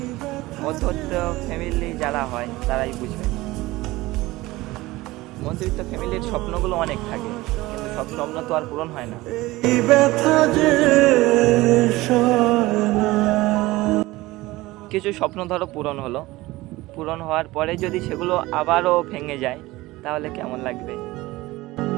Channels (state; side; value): quieter; left; 19.3 dB